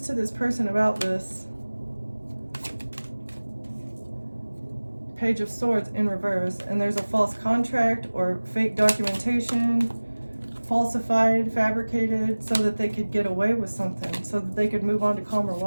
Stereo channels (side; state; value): both; inverted; correlation -1.00